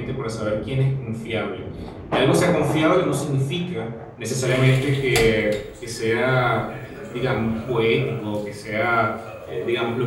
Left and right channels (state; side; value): identical; both; correlation 1.00